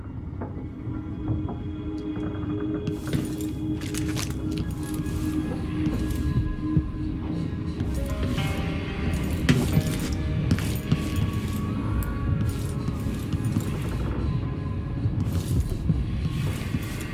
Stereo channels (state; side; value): identical; both; correlation 1.00